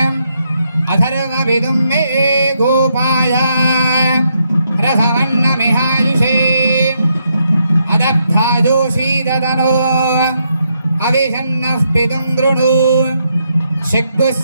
अथर्वविदुं मे गोपाय रसवन्नमिहायुषे अदब्धा जोषी तनो अविषन्नः पितुं दृणु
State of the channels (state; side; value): inverted; both; correlation -0.79